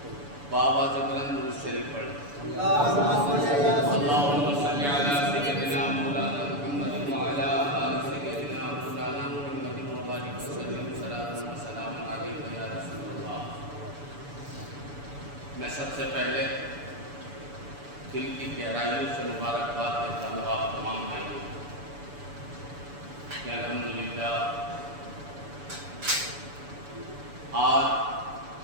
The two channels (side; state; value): left; late; 7.0 ms